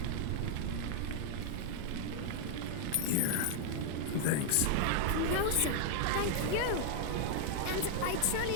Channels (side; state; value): both; different; correlation 0.00